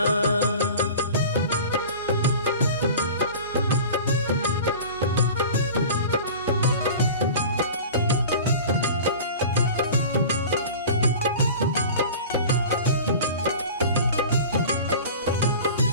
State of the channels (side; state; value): both; inverted; correlation -0.38